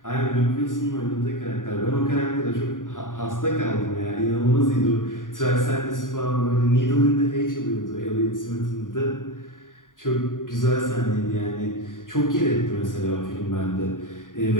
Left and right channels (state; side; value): late; right; 0.89 ms